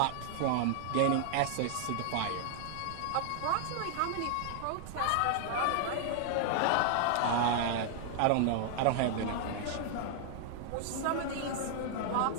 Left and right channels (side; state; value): both; different; correlation 0.00